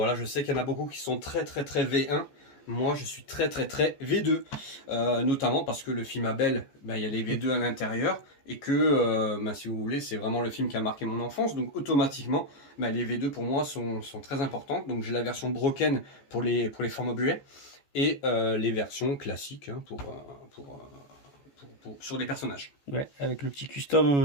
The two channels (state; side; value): late; right; 14 ms